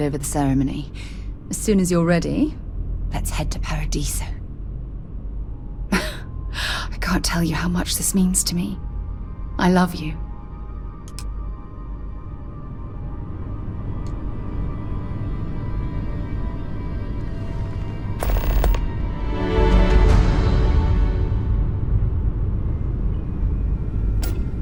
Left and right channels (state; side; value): identical; both; correlation 1.00